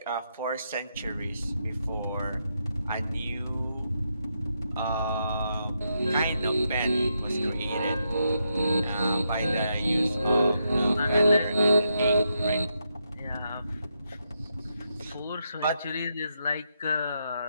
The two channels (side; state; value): both; inverted; correlation -0.82